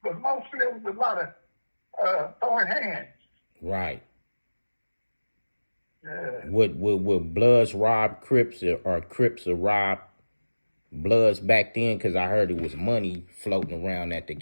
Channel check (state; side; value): inverted; both; correlation -1.00